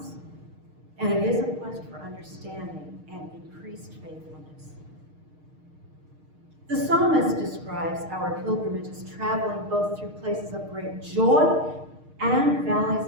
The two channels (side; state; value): left; late; 6.5 ms